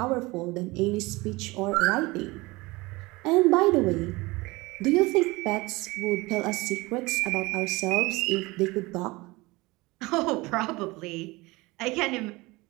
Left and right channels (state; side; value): quieter; left; 22.5 dB